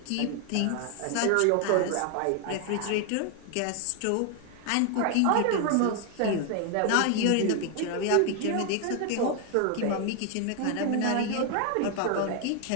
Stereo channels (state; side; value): different; both; correlation 0.01